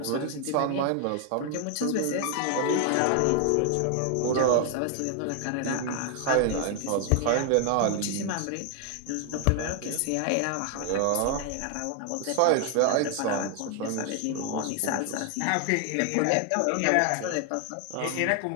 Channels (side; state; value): both; different; correlation 0.00